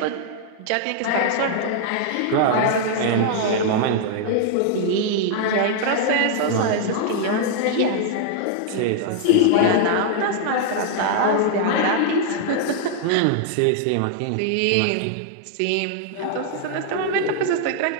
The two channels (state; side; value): different; both; correlation -0.01